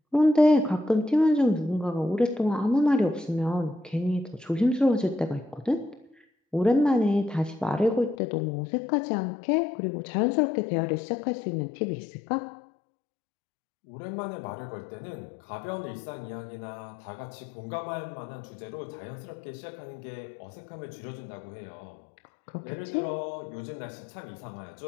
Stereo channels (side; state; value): right; drops out; at 8.2 s